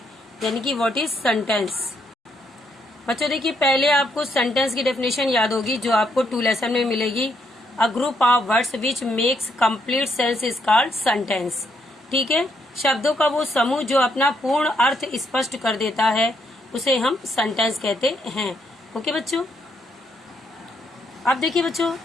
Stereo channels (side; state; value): both; normal; correlation 0.75